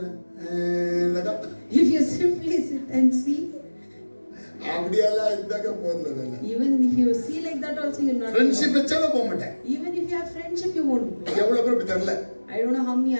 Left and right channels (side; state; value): both; inverted; correlation -1.00